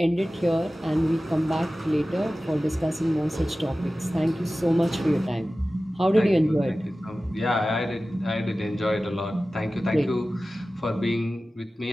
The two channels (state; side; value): normal; both; correlation 0.96